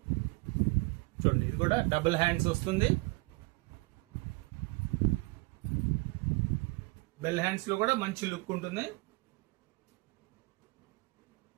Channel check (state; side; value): quieter; left; 26.2 dB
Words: చూడండి, ఇది కూడా డబుల్ హ్యాండ్స్ వస్తుంది. బెల్ హ్యాండ్స్ లో కూడా మంచి లుక్ ఉంటుంది.